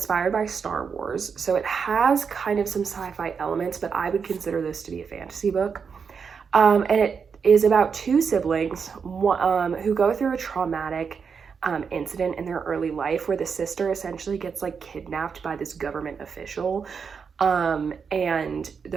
by Star Wars, so it has kind of some sci-fi elements, but I would consider this to be a fantasy book. And it is about 2 siblings who go through a traumatic incident in their early life where the sister essentially gets like kidnapped by this government official, and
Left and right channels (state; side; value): quieter; left; 6.1 dB